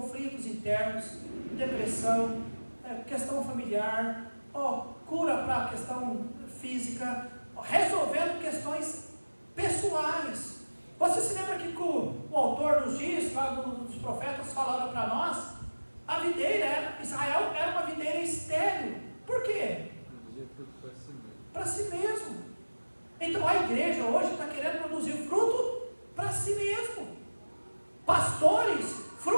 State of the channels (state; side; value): inverted; both; correlation -1.00